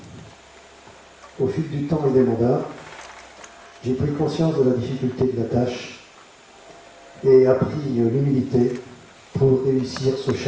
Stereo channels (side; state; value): both; identical; correlation 1.00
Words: Au fil du temps et des mandats, j'ai pris conscience de la difficulté de la tâche et appris l'humilité pour réussir ce